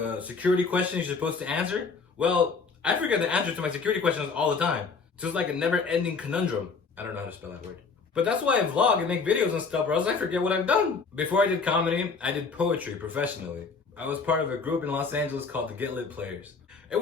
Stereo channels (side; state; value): right; quieter; 4.8 dB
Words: security questions you're supposed to answer. Well, I forget the answer to my security questions all the time. So it's like a never-ending conundrum. I don't know how to spell that word. But that's why I vlog and make videos and stuff, or else I forget what I've done. Before I did comedy, I did poetry professionally. I was part of a group in Los Angeles called the Get Lit Players. It